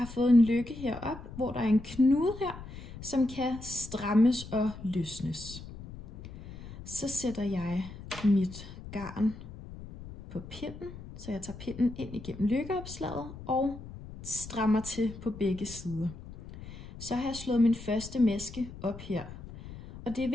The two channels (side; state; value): left; noise; rumble, 14 dB below the sound